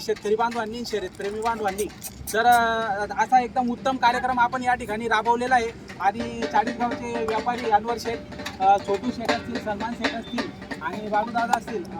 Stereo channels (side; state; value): both; identical; correlation 1.00